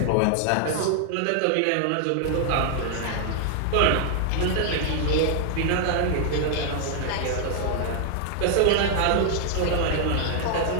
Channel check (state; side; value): different; both; correlation 0.00